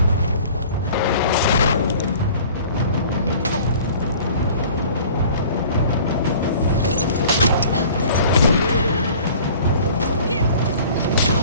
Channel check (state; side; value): inverted; both; correlation -0.47